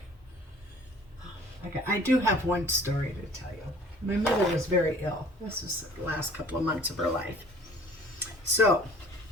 I do have one story to tell you. My mother was very ill. This was the last couple of months of her life. So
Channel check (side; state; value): both; normal; correlation 0.51